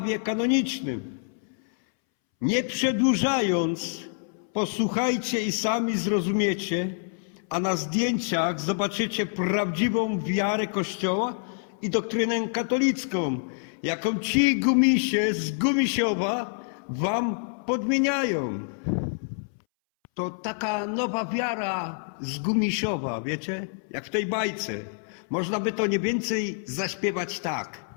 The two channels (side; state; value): right; silent; 60 dB below the other